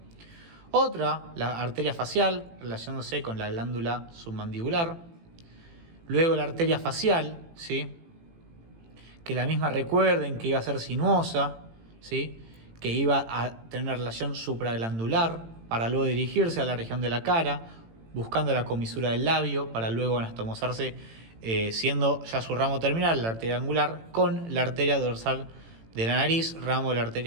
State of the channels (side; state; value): left; late; 18 ms